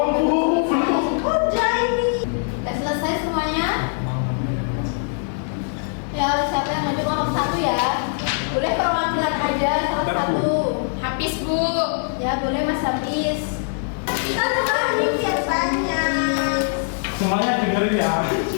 Bu, belum. Udah ini. Sudah selesai semuanya? Ya, siapa yang maju kelompok 1 ya? Boleh perwakilan aja salah satu. Habis, Bu. Ya, boleh Mas Hafiz. Kita terakhir biasanya. Semuanya dengerin ya.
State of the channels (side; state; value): right; silent; 64 dB below the other